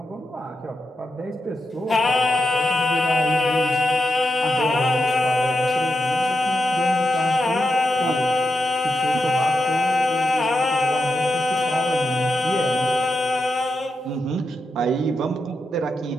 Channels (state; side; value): normal; both; correlation 0.87